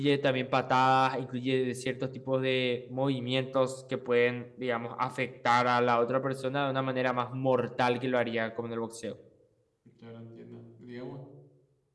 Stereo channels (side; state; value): both; identical; correlation 1.00